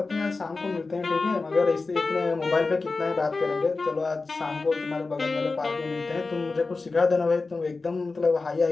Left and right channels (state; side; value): quieter; right; 3.9 dB